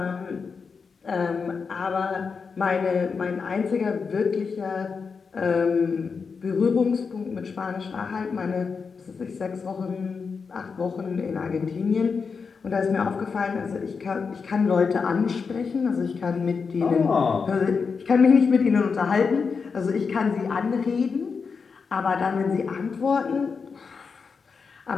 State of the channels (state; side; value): quieter; right; 5.3 dB